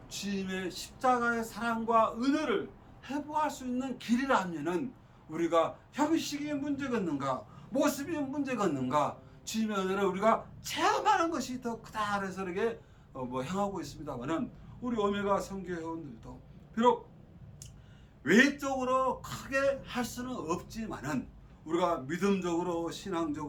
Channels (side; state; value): both; identical; correlation 1.00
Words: 주님의 십자가의 사랑과 은혜를 회복할 수 있는 길이라면은 우리가 형식이 문제겠는가 모습이 문제겠는가 주님의 은혜를 우리가 체험하는 것이 더 크다 그래서 이렇게 행하고 있습니다만은 우리 오메가 선교회원들도 비록 외적으로 크게 할 수는 없지만은 우리가 믿음적으로